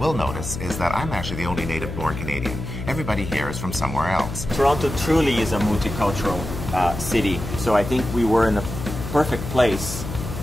notice, is that I'm actually the only native-born Canadian. Everybody here is from somewhere else. Toronto truly is a multicultural city, so I think we were in a perfect place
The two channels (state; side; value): noise; left; hum, 7 dB below the sound